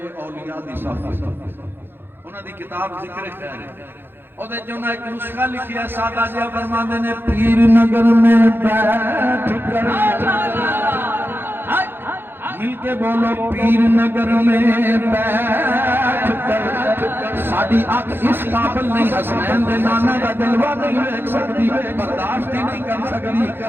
اولیاء دی صف، انہاں دی کتاب ذکر خیر ہے. او دے جو ایک نسخہ لکھیا ہے سادہ جہا فرماندے نے پیر نگر میں بیٹھ کر مل کے بولو پیر نگر میں بیٹھ کر ساڈی اکھ اس قابل نہیں حسنین دے نانا دا جلوہ نہیں دیکھ سکتی، برداشت ہی نہیں کر سکتی.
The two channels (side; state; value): left; late; 0.10 ms